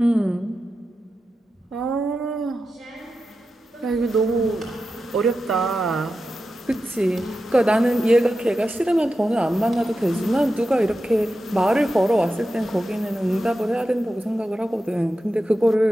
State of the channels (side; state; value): both; normal; correlation 0.91